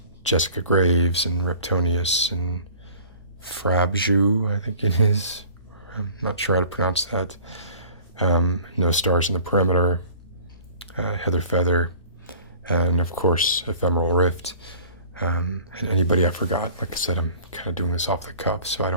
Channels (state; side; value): inverted; both; correlation -0.48